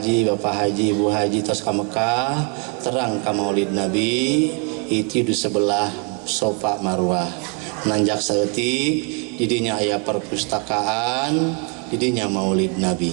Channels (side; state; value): left; quieter; 36.7 dB